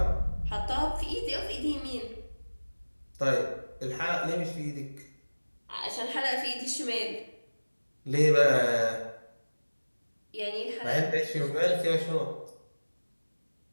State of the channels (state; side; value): inverted; both; correlation -1.00